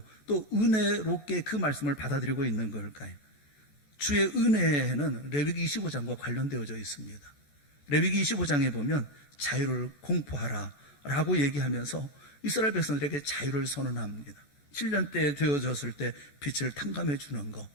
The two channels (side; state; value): right; late; 14 ms